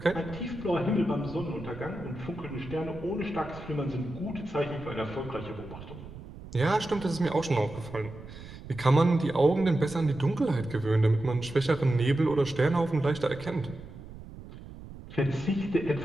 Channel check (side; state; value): right; noise; rumble, 15 dB below the sound